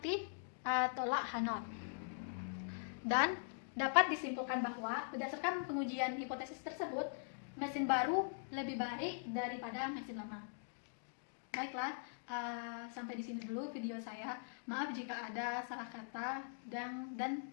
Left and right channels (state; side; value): silent; right; digital silence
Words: tolak H0. Dan dapat disimpulkan bahwa berdasarkan pengujian hipotesis tersebut, mesin baru lebih baik daripada mesin lama. Baiklah, sampai di sini dulu video saya. Maaf jika ada salah kata dan